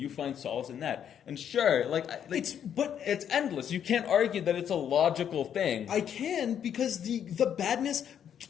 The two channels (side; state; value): right; quieter; 9.0 dB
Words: find solace in that. And sure, it's endless. You can't argue that it's a logical thing. I can, because the badness,